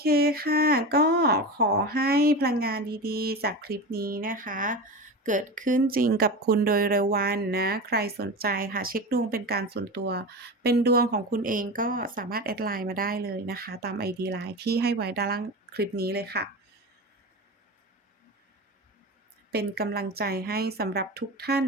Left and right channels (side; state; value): both; normal; correlation 0.25